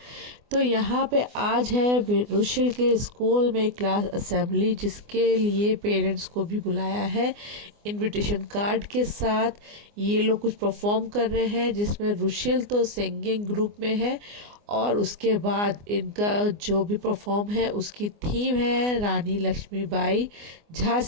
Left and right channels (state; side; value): late; left; 24 ms